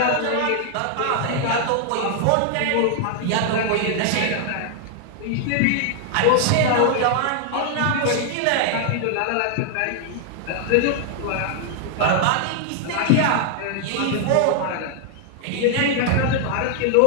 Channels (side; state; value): both; different; correlation 0.00